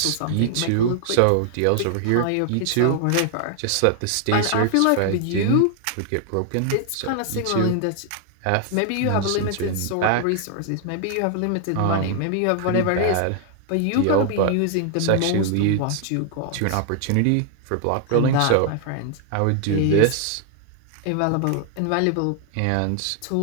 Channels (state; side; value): different; both; correlation 0.00